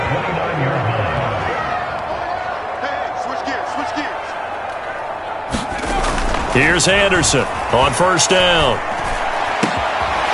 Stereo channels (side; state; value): both; identical; correlation 1.00